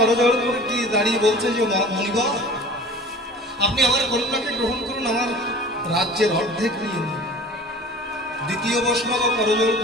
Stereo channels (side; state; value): both; normal; correlation 0.43